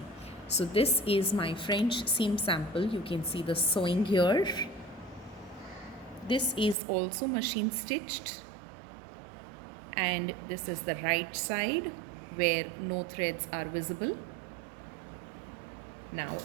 So this is my French seam sample. You can see the sewing here. This is also machine stitched, and this is the right side where no threads are visible. Now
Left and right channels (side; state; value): left; drops out; at 6.8 s